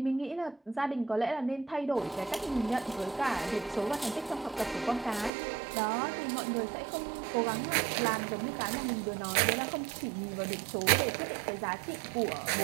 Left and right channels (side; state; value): left; drops out; at 5.3 s